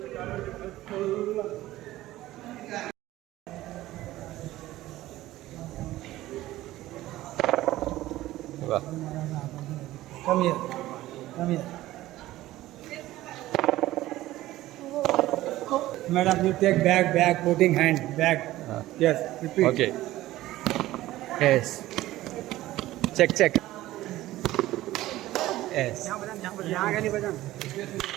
Come here. madam, you take bag, putting hand, bag. Yes, repeat. Okay. Yes. Check. Yes.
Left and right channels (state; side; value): quieter; left; 16.0 dB